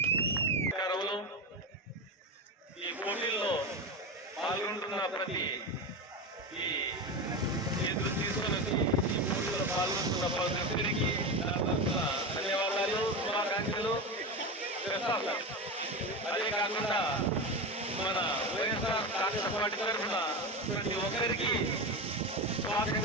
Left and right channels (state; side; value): normal; both; correlation 0.20